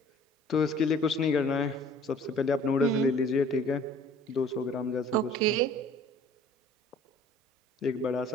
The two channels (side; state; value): both; normal; correlation 0.52